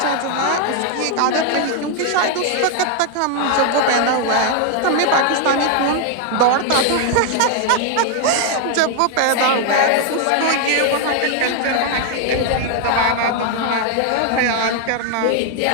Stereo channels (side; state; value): both; different; correlation 0.00